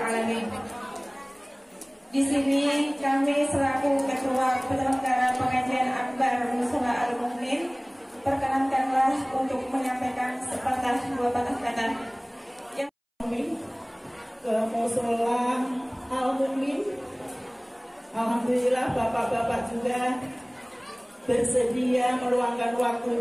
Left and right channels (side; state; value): both; identical; correlation 1.00